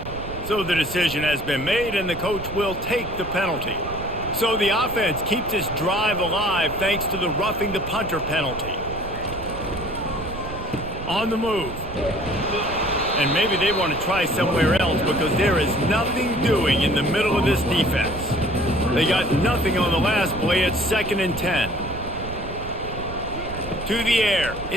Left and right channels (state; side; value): noise; right; rumble, 11 dB below the sound